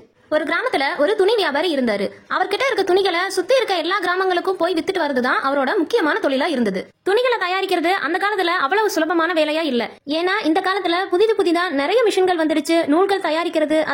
ஒரு கிராமத்துல ஒரு துணி வியாபாரி இருந்தாரு. அவர்கிட்ட இருக்க துணிகளை சுத்தி இருக்க எல்லா கிராமங்களுக்கும் போய் வித்துட்டு வரதுதான் அவரோட முக்கியமான தொழிலா இருந்தது. துணிகளை தயாரிக்கிறது அந்த காலத்துல அவ்வளவு சுலபமான வேலையா இல்ல. ஏன்னா இந்த காலத்துல புதிதா நிறைய மிஷின்கள் வந்துருச்சு. நூல்கள் தயாரிக்கிறது,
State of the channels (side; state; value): both; identical; correlation 1.00